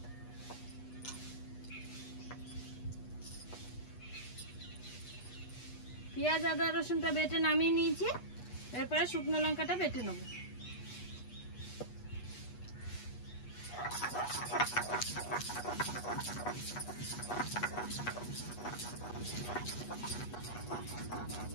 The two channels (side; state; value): right; late; 8.2 ms